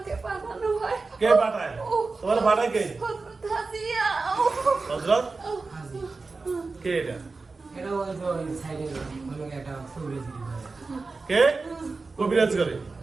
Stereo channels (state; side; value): quieter; left; 3.9 dB